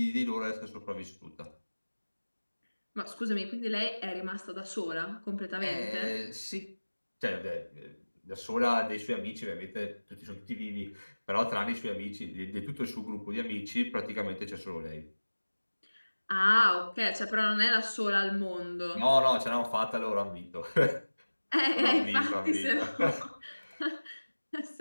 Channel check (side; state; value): both; inverted; correlation -1.00